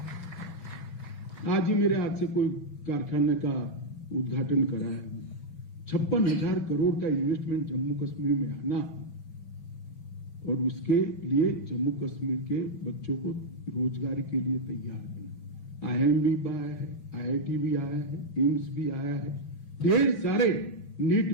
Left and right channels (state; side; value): late; right; 5.9 ms